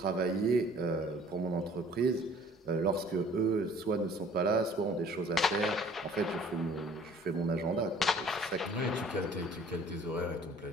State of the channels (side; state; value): both; normal; correlation 0.53